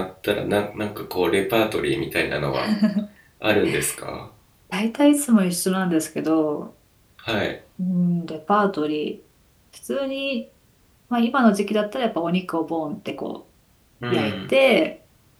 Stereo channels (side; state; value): both; identical; correlation 1.00